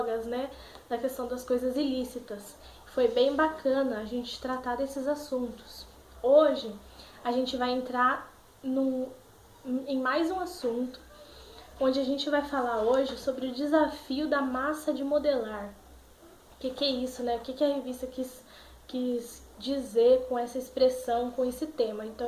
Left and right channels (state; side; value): identical; both; correlation 1.00